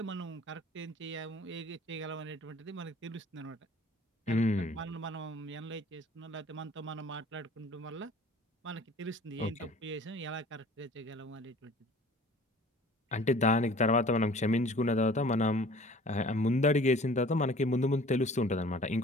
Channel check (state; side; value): normal; both; correlation 0.48